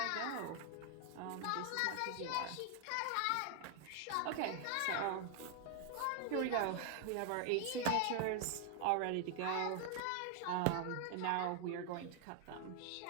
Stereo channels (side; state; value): both; different; correlation 0.00